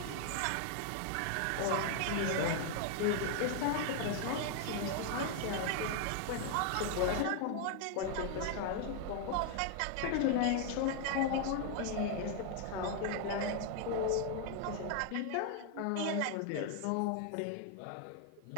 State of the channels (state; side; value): different; both; correlation 0.00